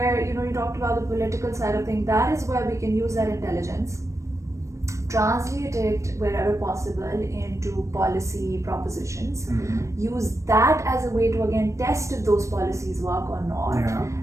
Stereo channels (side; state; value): left; late; 0.15 ms